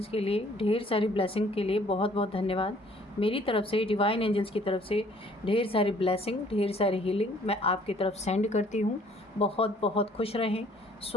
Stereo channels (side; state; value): both; normal; correlation 0.58